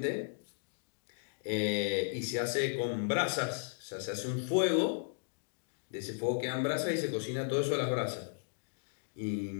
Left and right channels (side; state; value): right; silent; digital silence